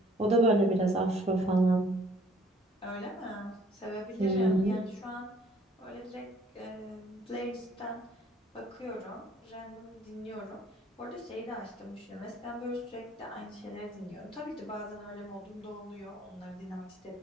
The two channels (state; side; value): normal; both; correlation 0.58